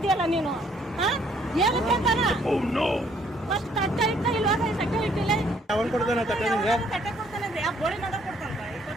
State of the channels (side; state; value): both; normal; correlation 0.65